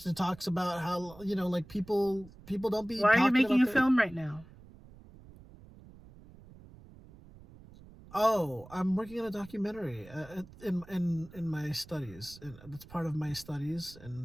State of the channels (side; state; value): right; noise; rumble, 20 dB below the sound